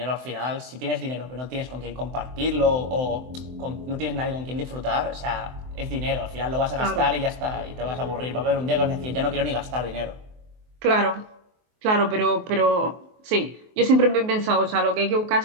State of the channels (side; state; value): left; late; 23 ms